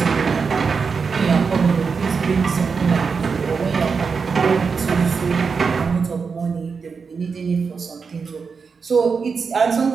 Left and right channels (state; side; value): quieter; left; 5.4 dB